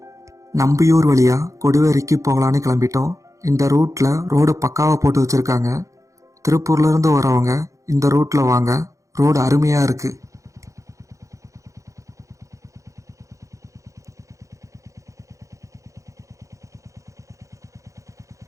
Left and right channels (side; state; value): left; late; 0.15 ms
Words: நம்பியூர் வழியாக கொடுவரைக்கு போகலான்னு கிளம்பிட்டோம். இந்த ரூட்டில் ரோடு பக்காவாக போட்டு வச்சுருக்காங்க. திருப்பூர்லேருந்து வரவங்க இந்த ரூட்டில் வாங்க, ரோடு அருமையாக இருக்குது.